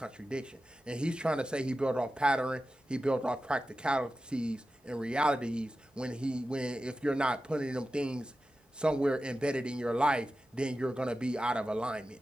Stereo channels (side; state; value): both; normal; correlation 0.93